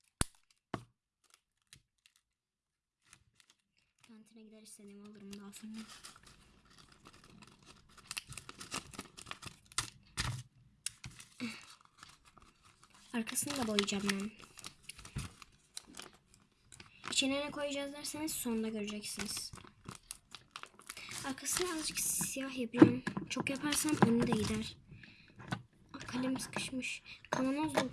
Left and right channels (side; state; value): both; identical; correlation 1.00